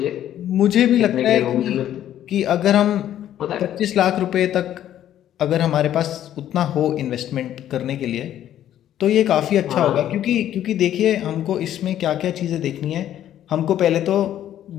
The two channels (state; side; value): quieter; right; 11.5 dB